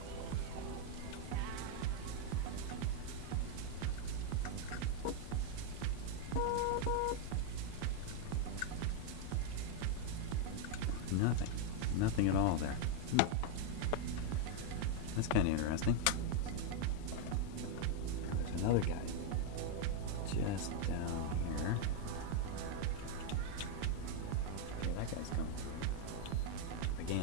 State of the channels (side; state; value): both; different; correlation 0.00